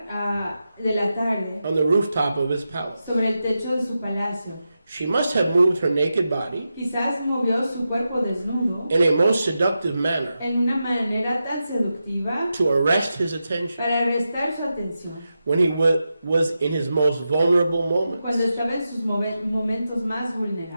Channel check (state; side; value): inverted; both; correlation -0.89